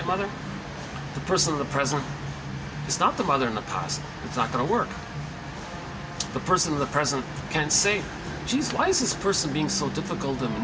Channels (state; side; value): identical; both; correlation 1.00